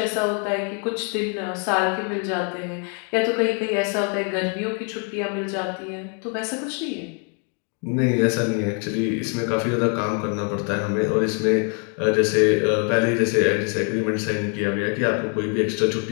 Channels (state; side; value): quieter; right; 40.0 dB